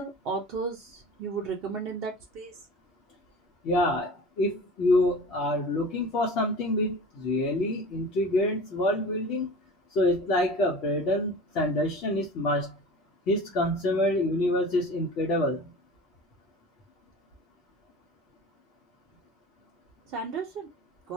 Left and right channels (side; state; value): both; normal; correlation 0.37